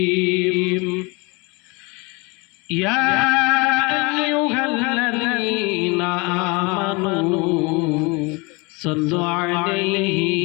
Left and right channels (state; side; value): quieter; right; 27.3 dB